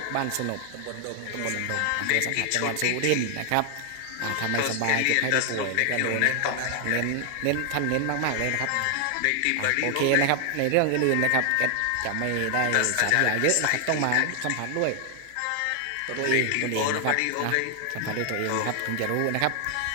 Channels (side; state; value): both; different; correlation 0.00